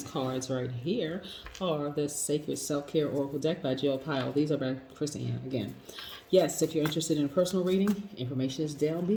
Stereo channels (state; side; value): identical; both; correlation 1.00